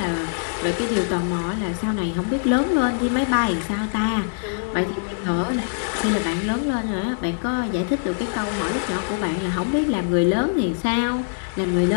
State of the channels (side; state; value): right; silent; digital silence